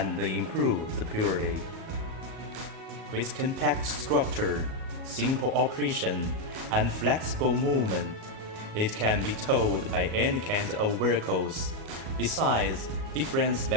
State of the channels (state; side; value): late; left; 37 ms